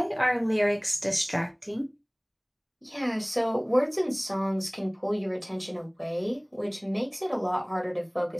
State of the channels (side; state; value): both; identical; correlation 1.00